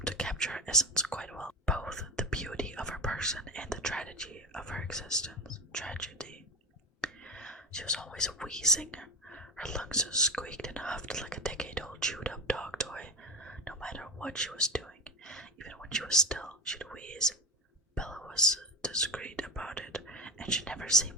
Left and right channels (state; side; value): normal; both; correlation 0.22